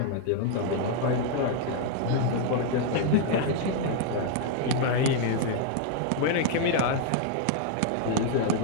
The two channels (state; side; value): different; both; correlation 0.00